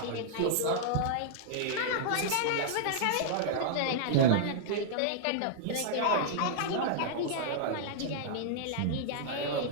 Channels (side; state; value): both; different; correlation -0.01